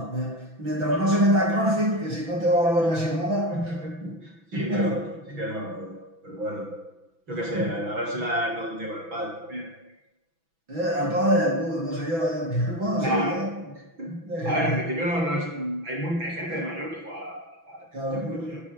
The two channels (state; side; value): late; left; 6.0 ms